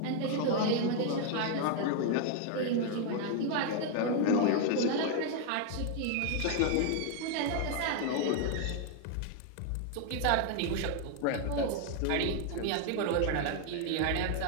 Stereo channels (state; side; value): different; both; correlation 0.00